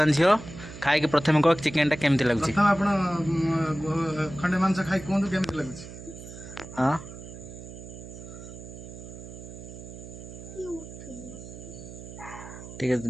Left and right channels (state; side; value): noise; right; hum, 13 dB below the sound